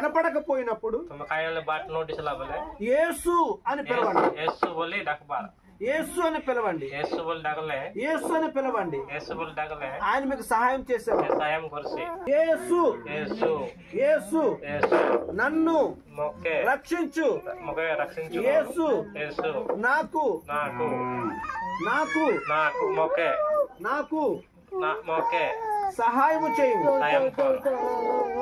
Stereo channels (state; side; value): identical; both; correlation 1.00